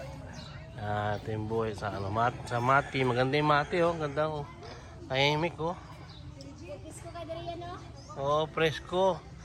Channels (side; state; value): both; identical; correlation 1.00